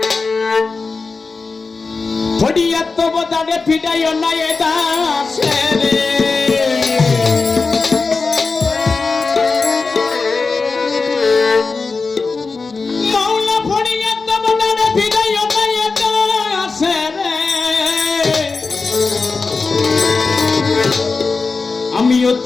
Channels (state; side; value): quieter; right; 4.2 dB